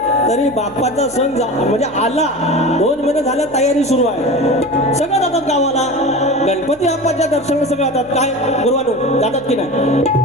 तरी बाप्पाचा सण म्हणजे आला 2 महिने झालं, तयारी सुरू आहे. सगळं जातात गावाला, गणपती बाप्पाच्या दर्शनाला सगळं जातात. काय गुरुवानो जातात की नाही,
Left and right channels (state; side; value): noise; right; hum, 26 dB below the sound